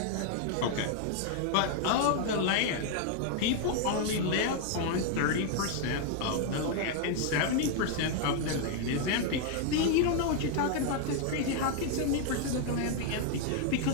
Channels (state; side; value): different; both; correlation 0.00